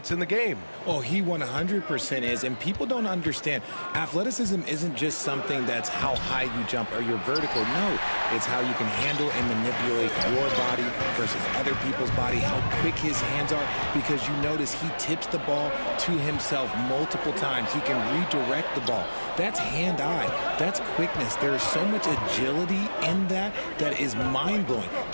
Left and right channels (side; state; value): both; inverted; correlation -1.00